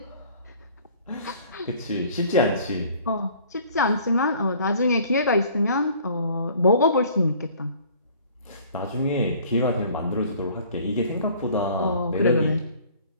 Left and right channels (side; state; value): both; inverted; correlation -0.52